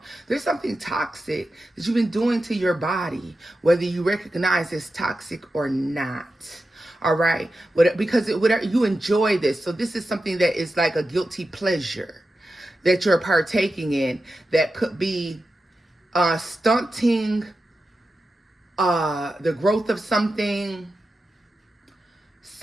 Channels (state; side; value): normal; both; correlation 0.91